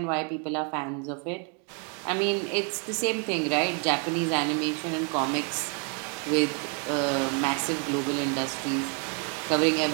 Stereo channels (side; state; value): left; quieter; 37.9 dB